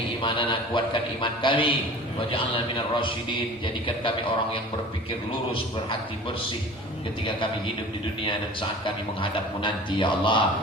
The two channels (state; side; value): normal; both; correlation 0.42